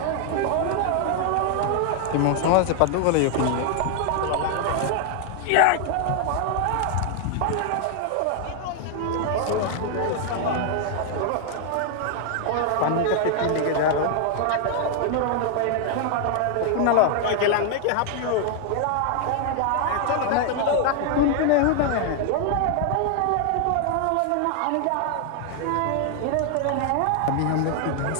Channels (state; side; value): different; both; correlation 0.00